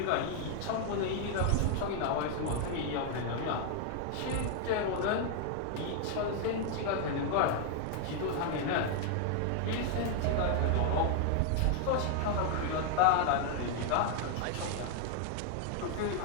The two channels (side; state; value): both; different; correlation 0.00